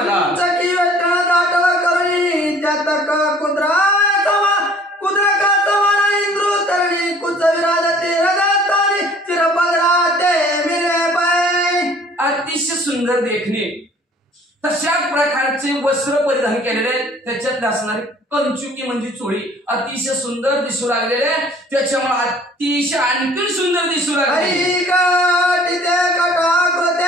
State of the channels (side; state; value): both; normal; correlation 0.53